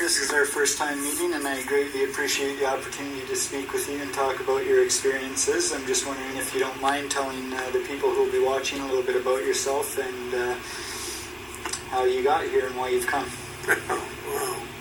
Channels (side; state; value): both; identical; correlation 1.00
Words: is our first time meeting, and I greatly appreciate the opportunity to speak with you and talk about your experiences. I'm just wondering if you don't mind telling the people who will be watching a little bit about yourself and how you got here and why you've come.